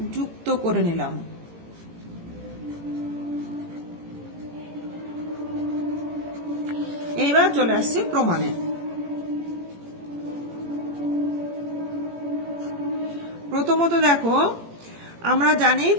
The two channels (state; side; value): late; left; 18 ms